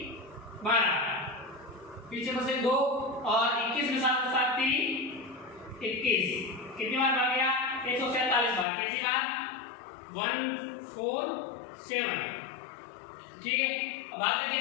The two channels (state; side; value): drops out; right; at 8.7 s